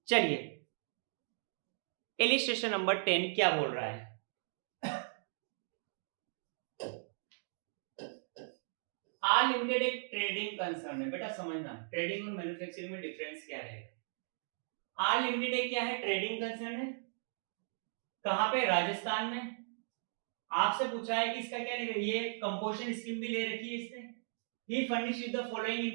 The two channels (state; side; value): silent; left; digital silence